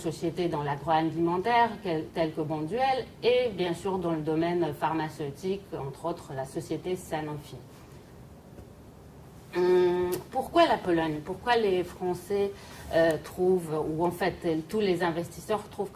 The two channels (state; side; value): identical; both; correlation 1.00